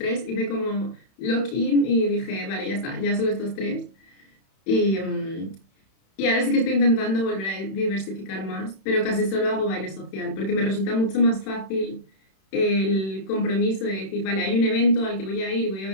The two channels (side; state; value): right; late; 31 ms